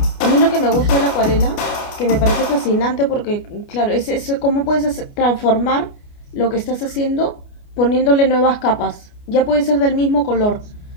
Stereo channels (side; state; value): right; late; 29 ms